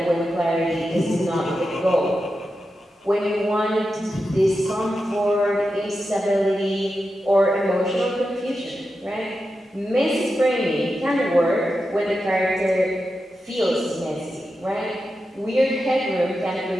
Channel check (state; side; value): normal; both; correlation 0.90